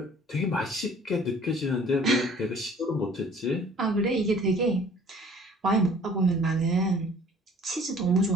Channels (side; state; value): both; normal; correlation 0.52